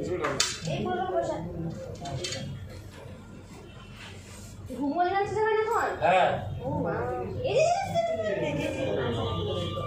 এই বলো বসা ঘুমোয় যাচ্ছে যাবে এখন হ্যাঁ ও মা এই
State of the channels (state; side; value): identical; both; correlation 1.00